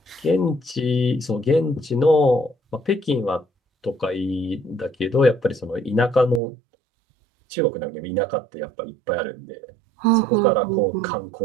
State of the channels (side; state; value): left; drops out; at 6.4 s